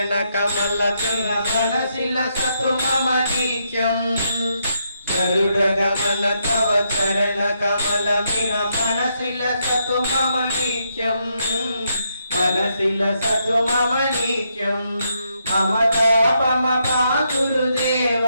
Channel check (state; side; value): inverted; both; correlation -0.78